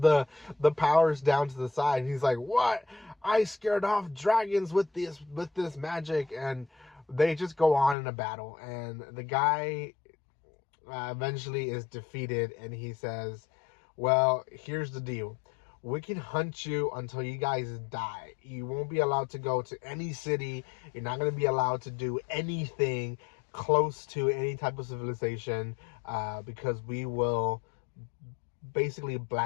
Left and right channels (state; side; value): drops out; right; at 8.0 s